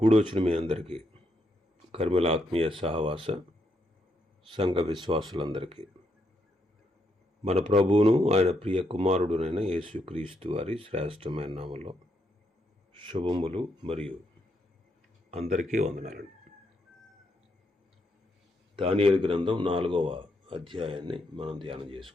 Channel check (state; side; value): normal; both; correlation 0.78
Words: మీ అందరికీ, కర్మల ఆత్మీయ సహవాస సంఘ విశ్వాసులందరికీ మన ప్రభువును ఆయన ప్రియ కుమారుడునైన యేసుక్రీస్తు వారి శ్రేష్టమైన నామంలో శుభములు మరియు అందరికీ వందనాలండి. దానియేలు గ్రంథం 4వ అధ్యాయాన్ని మనం ధ్యానం